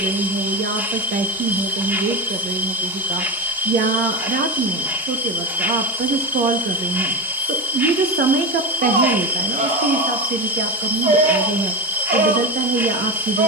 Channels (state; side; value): normal; both; correlation 0.22